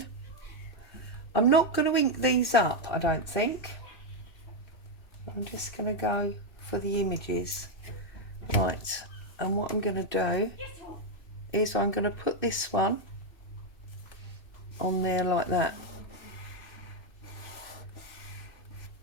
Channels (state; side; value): late; right; 2.6 ms